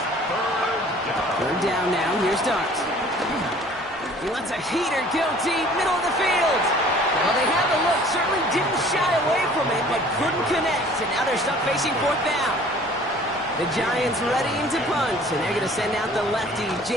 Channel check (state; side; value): normal; both; correlation 0.51